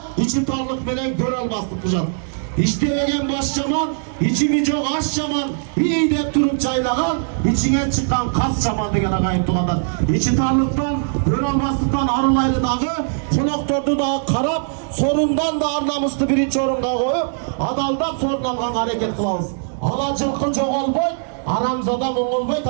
içi tarlık bilen gör almazlık bıcan. İştemegen baş çaman, içimi çok aş çaman, iyi de durup çaylagan, içine çıkan kas çaman degen agayip tuğanlar. İçi tarlıktan, gör almazlıktan arılaylı dağı, konaktordu da karap, sorundan da arnamuslu birinci orunga koyup, adaldan sorun algan hareket kılavuz. Alacılıkı çok olboy, aramzada mongolboy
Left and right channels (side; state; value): left; silent; digital silence